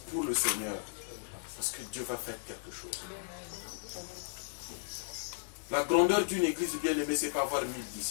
pour le Seigneur. Parce que Dieu va faire quelque chose. La grandeur d'une église bien-aimée, ce n'est pas avoir 1000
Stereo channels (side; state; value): right; silent; digital silence